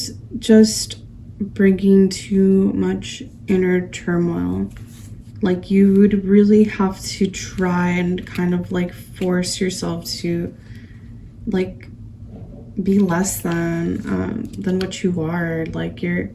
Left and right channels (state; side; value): identical; both; correlation 1.00